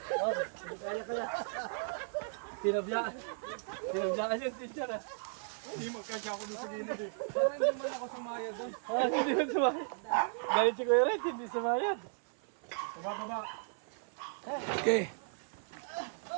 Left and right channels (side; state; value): left; silent; 54 dB below the other